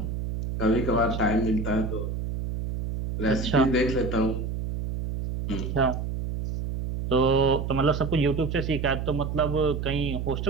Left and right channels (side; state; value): right; noise; hum, 4 dB below the sound